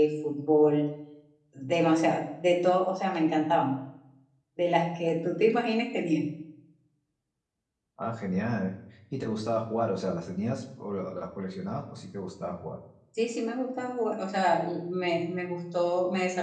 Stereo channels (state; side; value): identical; both; correlation 1.00